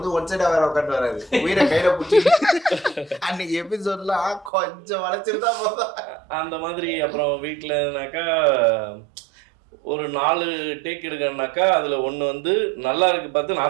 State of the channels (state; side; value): drops out; left; at 4.5 s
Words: ஒன் சைடா வேற உட்காந்து வராது, உயிரை கையில பிடிச்சி அன்னைக்கு எபிசோட்லாம் கொஞ்சம் வளைச்சிருந்தா போதும் அந்த மாதிரி. அப்புறம் வீட்டிலனாக்கா ஒரு 4 டேக் எடுக்கணும்னாக்கா அதுல ஒன்று வந்து நல்லா இருக்கு பார்த்து